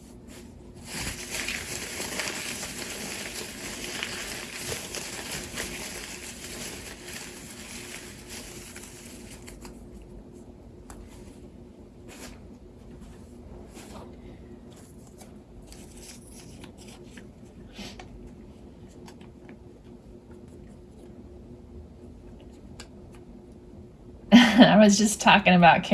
I was just talking about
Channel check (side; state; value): both; identical; correlation 1.00